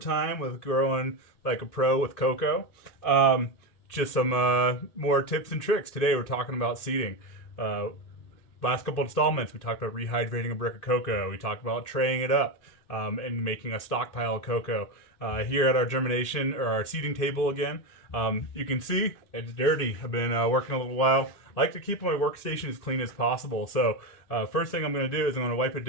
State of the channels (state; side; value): late; right; 2.6 ms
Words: with growing like a pro with Coco. Just some more tips and tricks. Today we're talking about seeding. Last couple installments we talked about rehydrating a brick of cocoa. We talked about traying it up and making a stockpile of cocoa. Here at our germination or our seeding table again, you can see it's dirty. I've been working a little while. I like to keep my workstation as clean as possible. So first thing I'm going to do is I'm going to wipe it